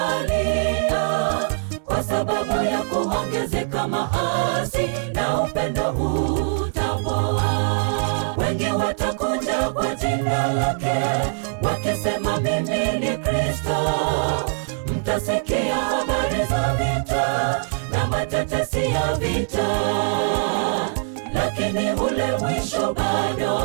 kwa sababu ya kuongezeka maasi na upendo utapoa. Wengi watakuja kwa jina lake wakisema, mimi ni Kristo. Mtasikia habari za vita na matetesi ya vita, lakini ule mwisho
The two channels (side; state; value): left; silent; digital silence